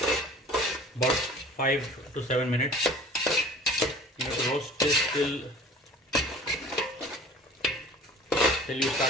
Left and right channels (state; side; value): normal; both; correlation 0.45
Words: 5 to 7 minutes. You have to roast this till you